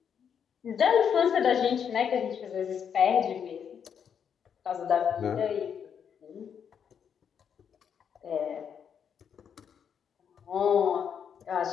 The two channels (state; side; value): quieter; right; 7.7 dB